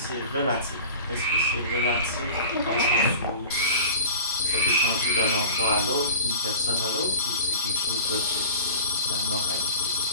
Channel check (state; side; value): inverted; both; correlation -0.39